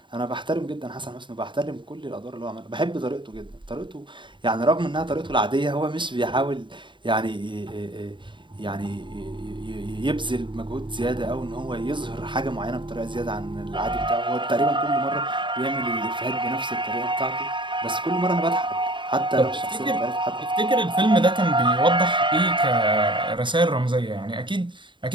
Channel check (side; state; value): left; late; 0.23 ms